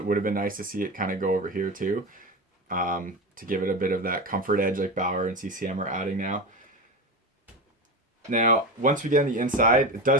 would have been nice to see it kind of go over here too, to give it a bit of that comfort edge like Bauer and CCM are adding now. Now, once we get on the inside, it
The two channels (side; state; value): both; normal; correlation 0.22